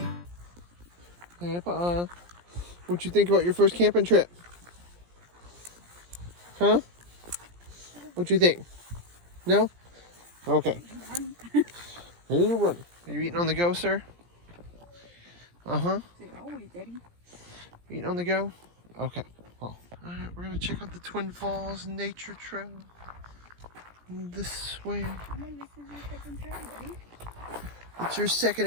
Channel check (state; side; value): late; left; 17 ms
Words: Hey, Paul. What you think about your first camping trip? Huh? What you think? No? Okay. Here you run. Are you eating on the go, sir? Uh-huh. Always, Daddy. Eating on the go? Okay. Well, alright, we're gonna check out the Twin Falls Nature Trail. This way. This is your second trail, Daddy. It's your second